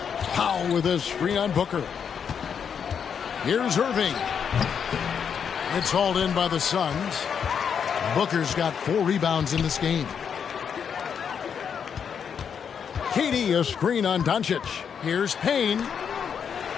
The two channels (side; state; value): right; quieter; 7.3 dB